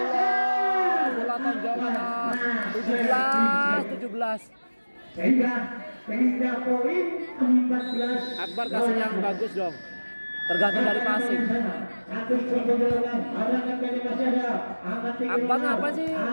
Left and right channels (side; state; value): both; inverted; correlation -1.00